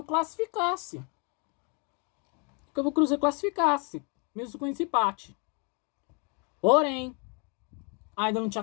classificasse. Mesmo com esse empate. Porém, ainda não tinha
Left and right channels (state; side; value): quieter; right; 35.1 dB